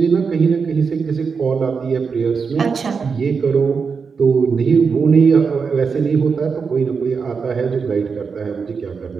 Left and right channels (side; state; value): left; quieter; 5.5 dB